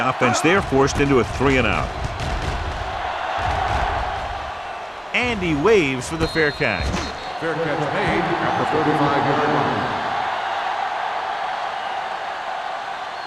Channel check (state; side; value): identical; both; correlation 1.00